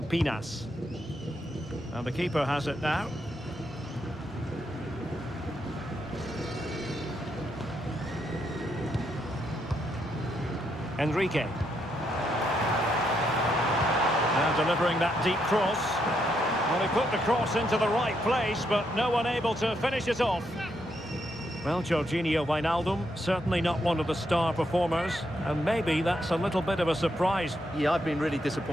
Pinas. And the keeper has it now. Enrique. Now delivering that deep cross. Well, he put the cross into the right place, but no one able to finish it off. Well, Jorginho Wijnaldum, certainly not one of the star performers, and maybe that's a little bit of a surprise. Yeah, I've been really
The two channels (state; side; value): normal; both; correlation 0.78